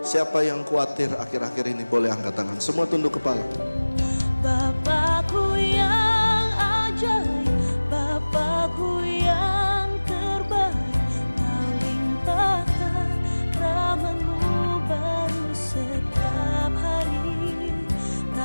Siapa yang khawatir akhir-akhir ini boleh angkat tangan. Semua tunduk kepala. Bapakku yang ajaib, Bapakku yang terbaik, Kau limpahkan rahmat-Mu baru setiap hari.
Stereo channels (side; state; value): both; inverted; correlation -1.00